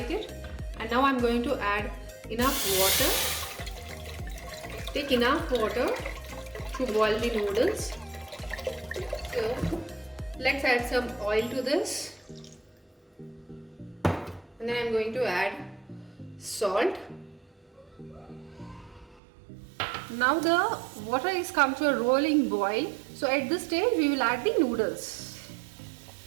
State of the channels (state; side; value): drops out; left; at 19.2 s